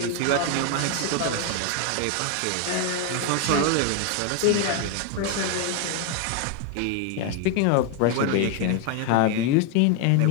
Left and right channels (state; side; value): different; both; correlation 0.01